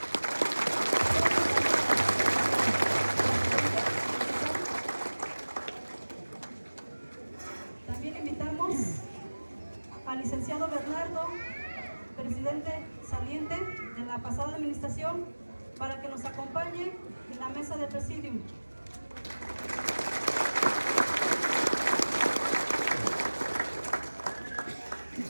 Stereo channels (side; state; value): both; inverted; correlation -1.00